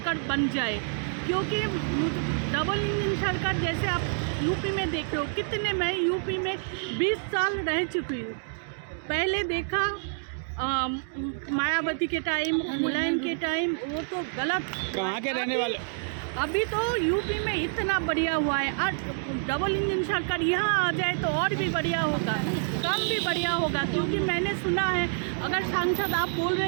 बन जाए, क्योंकि डबल इंजन सरकार जैसे आप यूपी में देख रहे हो, कितने, मैं यूपी में 20 साल रह चुकी हूँ। पहले देखा मायावती के टाइम, मुलायम के टाइम, वो तो गलत। कहाँ के रहने वाले? अभी तो यूपी में इतना बढ़िया हुआ है। आज डबल इंजन सरकार यहाँ आ जाए तो और भी बढ़िया होगा, कम भी बढ़िया होगा, क्योंकि मैंने सुना है, अगर सांसद आप बोल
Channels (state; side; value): silent; left; digital silence